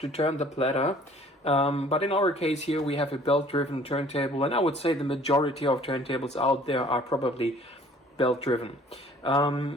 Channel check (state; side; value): normal; both; correlation 0.54